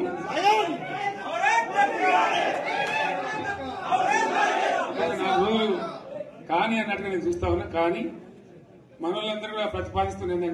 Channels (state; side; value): identical; both; correlation 1.00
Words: నాకు కానీ అన్నట్టుగా నేను చూస్తా ఉన్నా. కానీ మనోళ్ళందరూ కూడా ప్రతిపాదిస్తున్న